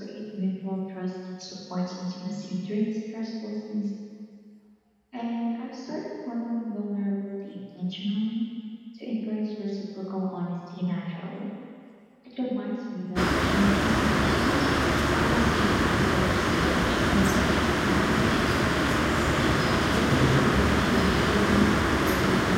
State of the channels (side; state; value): both; identical; correlation 1.00